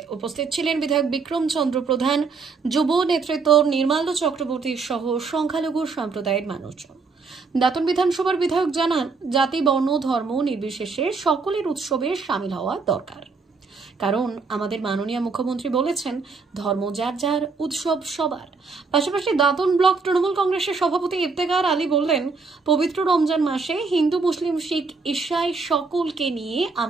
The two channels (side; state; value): left; quieter; 4.5 dB